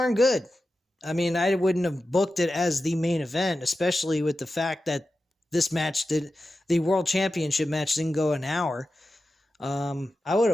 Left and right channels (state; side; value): normal; both; correlation 0.92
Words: good. I mean, I wouldn't have booked it as the main event, especially with the fact that the World Championship match didn't go an hour. I would